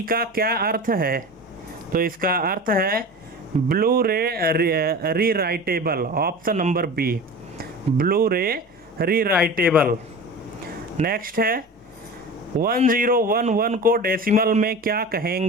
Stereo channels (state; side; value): normal; both; correlation 0.33